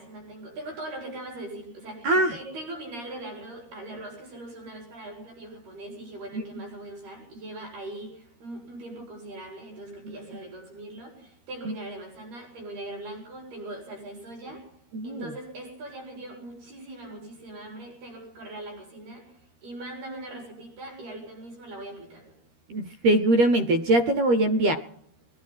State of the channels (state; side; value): late; left; 13 ms